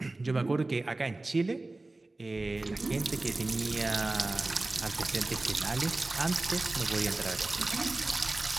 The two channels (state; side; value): quieter; left; 3.0 dB